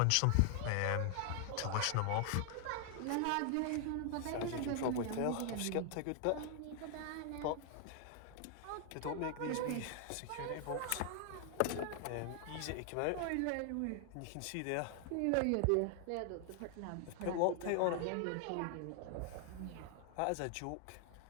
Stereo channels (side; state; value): both; different; correlation 0.00